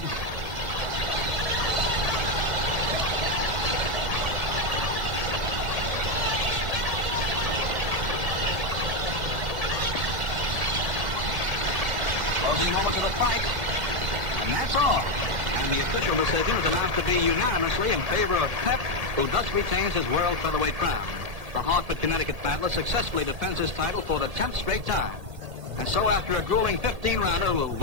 Closing moments of the fight, and that's all. And the official decision is announced to be unanimously in favor of Pep, who thus retains his world featherweight crown. the Hartford, Connecticut battler successfully defends his title for the 10th straight time. And so after a grueling 15-rounder,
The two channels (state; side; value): late; left; 1.8 ms